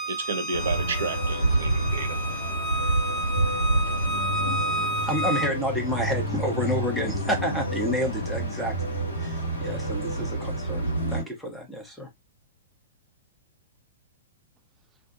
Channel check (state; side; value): inverted; both; correlation -0.31